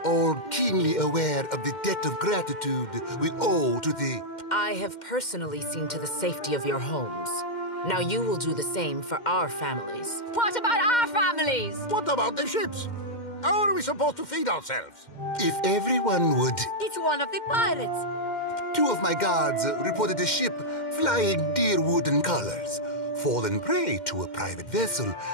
all keenly aware of the debt of gratitude we owe to the... I have personally seen to the safety of your homes. Now you will do the same for our families. What about our families? What about the ships? How are we supposed to feed ourselves? If everyone would... It's one of the pirates. 2 of my guards reported a ship flying deer wooden colors, fallen prey to a private vessel.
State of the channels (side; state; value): right; late; 2.1 ms